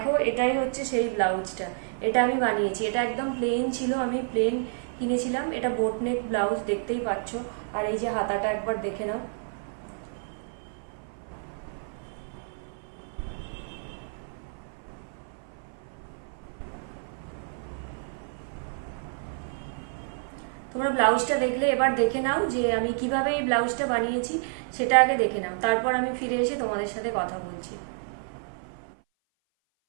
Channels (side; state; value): left; silent; 56 dB below the other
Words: এটাই হচ্ছে সেই ব্লাউজটা। এটা আমি বানিয়েছি। এটা একদম প্লেন ছিল, আমি প্লেন কিনেছিলাম। এটা বোট নেক ব্লাউজ, দেখতেই পাচ্ছ। আর এই যে হাতাটা একবার দেখে নাও। তোমরা ব্লাউজটা দেখলে এবার দেখে নাও যে আমি কিভাবে এই ব্লাউজটা বানিয়েছি, সেটা আগে দেখে নাও, তারপর আমি ফিরে এসে তোমাদের সাথে কথা বলছি।